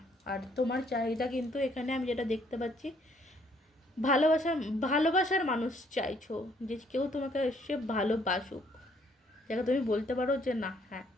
আর তোমার চাহিদা কিন্তু এখানে আমি যেটা দেখতে পাচ্ছি, ভালোবাসার মানুষ চাইছো, যে কেউ তোমাকে এসে ভালোবাসুক, যাকে তুমি বলতে পারো যে না, হ্যাঁ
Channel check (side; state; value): both; normal; correlation 0.66